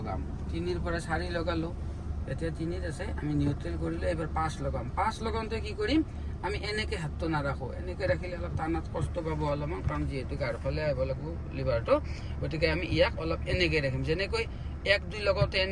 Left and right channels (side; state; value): both; identical; correlation 1.00